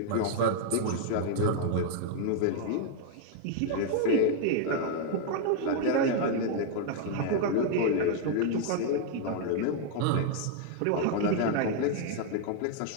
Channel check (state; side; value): different; both; correlation 0.00